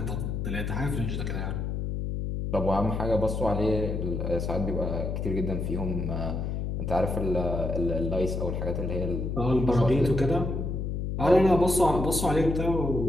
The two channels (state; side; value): noise; left; hum, 2 dB below the sound